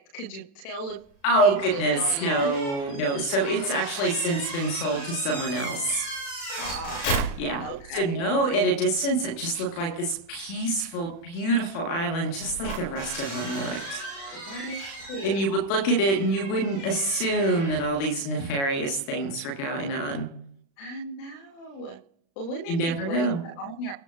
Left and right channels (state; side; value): late; right; 36 ms